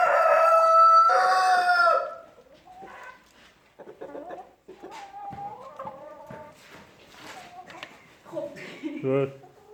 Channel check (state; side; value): identical; both; correlation 1.00